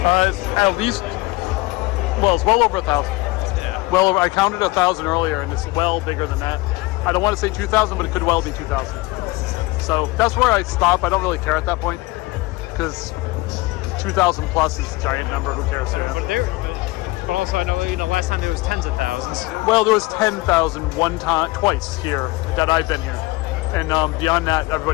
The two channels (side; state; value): right; quieter; 21.5 dB